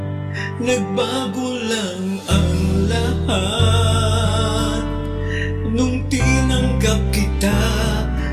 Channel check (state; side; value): identical; both; correlation 1.00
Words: Nagbago lang ang lahat nung tinanggap kita